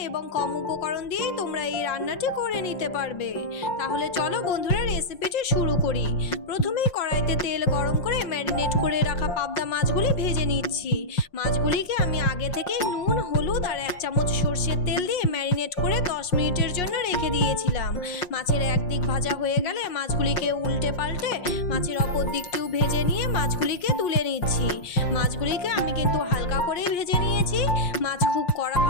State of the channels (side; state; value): right; late; 5.6 ms